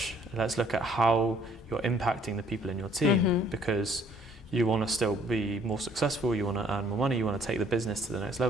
Let's look at how you're impacting the people in your team, because you want to still be more successful, you want to earn more money, you want to take the business to the next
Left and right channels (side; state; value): both; normal; correlation 0.61